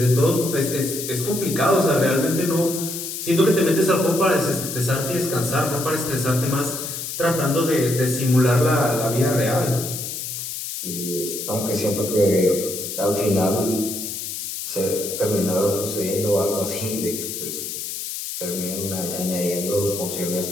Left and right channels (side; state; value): left; noise; hiss, 6 dB below the sound